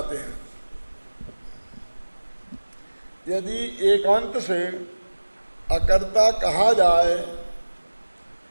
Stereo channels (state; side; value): inverted; both; correlation -1.00